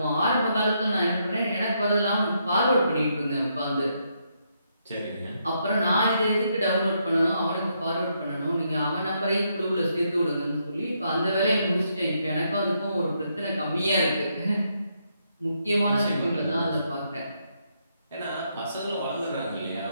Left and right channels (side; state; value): both; inverted; correlation -0.77